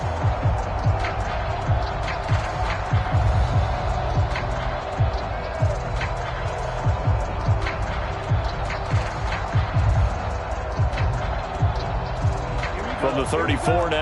From the 34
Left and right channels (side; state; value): both; identical; correlation 1.00